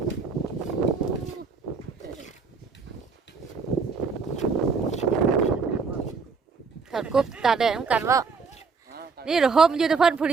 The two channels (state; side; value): quieter; left; 4.9 dB